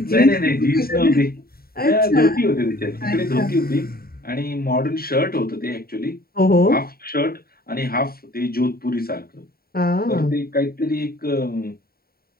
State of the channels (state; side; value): late; right; 0.44 ms